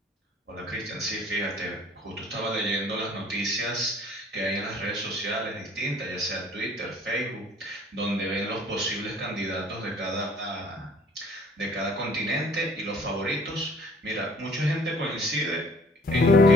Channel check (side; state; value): both; normal; correlation 0.54